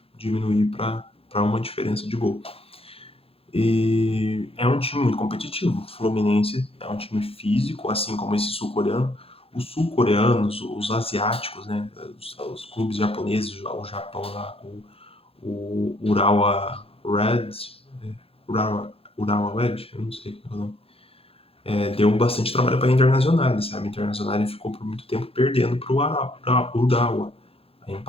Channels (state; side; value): late; right; 0.27 ms